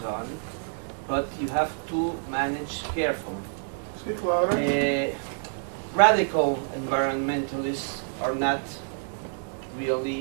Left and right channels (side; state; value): left; silent; digital silence